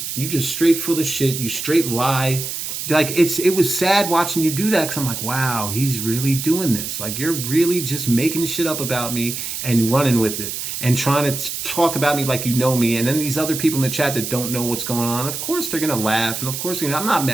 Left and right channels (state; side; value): noise; right; hiss, 5 dB below the sound